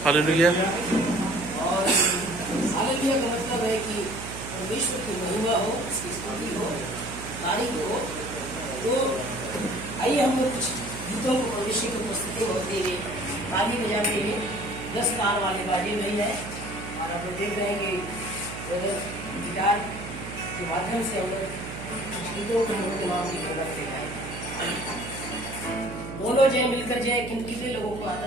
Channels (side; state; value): right; noise; hum, 10 dB below the sound